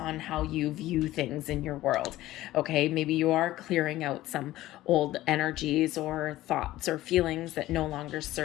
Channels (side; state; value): right; quieter; 15.9 dB